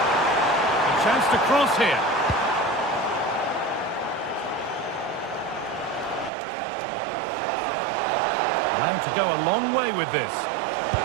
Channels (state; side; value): drops out; left; at 6.3 s